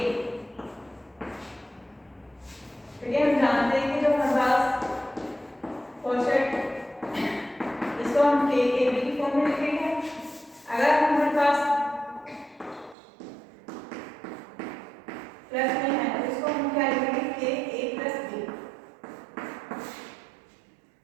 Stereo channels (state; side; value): drops out; left; at 13.0 s